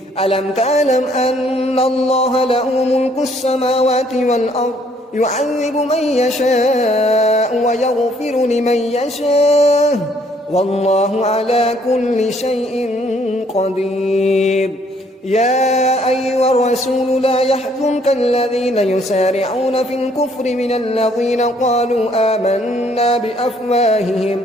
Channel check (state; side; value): normal; both; correlation 0.64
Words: ألم تعلم أن الله له ملك السماوات والأرض يعذب من يشاء ويغفر لمن يشاء والله على كل شيء قدير يا أيها الرسول لا يحزنك الذين يسارعون في الكفر من الذين قالوا آمنا